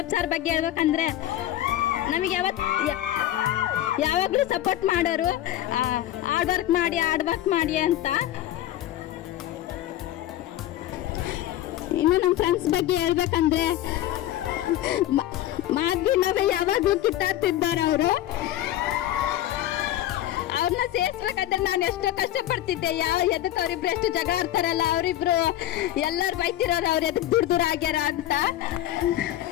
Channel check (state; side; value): quieter; right; 13.3 dB